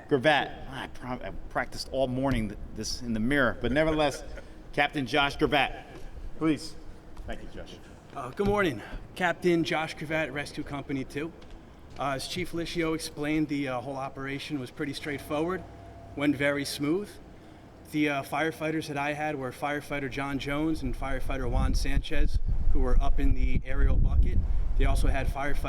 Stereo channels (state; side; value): identical; both; correlation 1.00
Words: I practiced all morning this in the mirror, but nevertheless, Captain Josh Gervette, please. Thank you, Josh. Good morning. Captain Josh Gervette, Rescue Company 2. As Chief Licio explained, the whole operation was pretty straightforward, went very smooth. The firefighters that I had were Firefighter John Jones and Firefighter Juan Sanchez, who were up in the aerial bucket. They also had